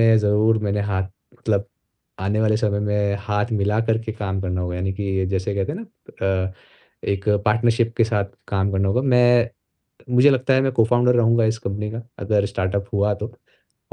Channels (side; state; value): both; identical; correlation 1.00